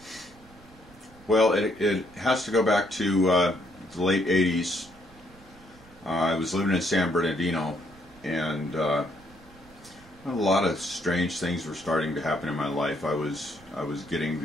Well, it has to go back to the late 80s. I was living in San Bernardino, and a lot of strange things were starting to happen in my life. I was getting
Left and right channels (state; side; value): noise; right; rumble, 24 dB below the sound